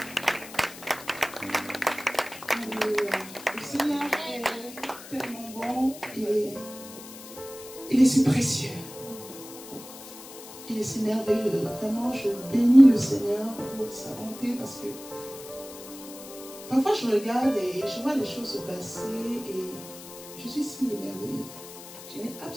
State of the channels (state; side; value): noise; left; hiss, 15 dB below the sound